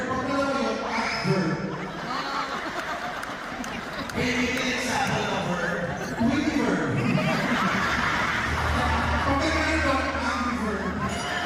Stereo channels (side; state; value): both; identical; correlation 1.00